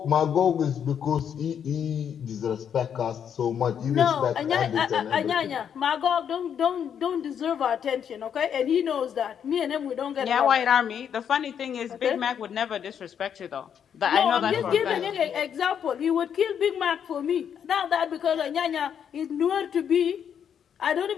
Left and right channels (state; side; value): quieter; right; 8.3 dB